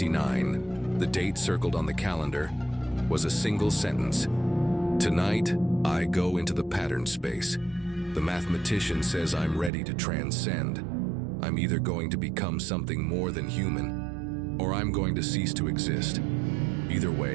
the date circled on the calendar, was a single sentence. "Tonight, I go into the pattern space. The mathematician says I'm ready to transcend. I'm either going to become something more than human, or I'm going to cease to exist. Either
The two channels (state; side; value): drops out; left; at 9.7 s